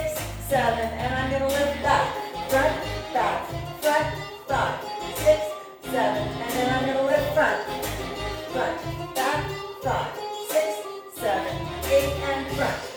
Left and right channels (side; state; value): both; identical; correlation 1.00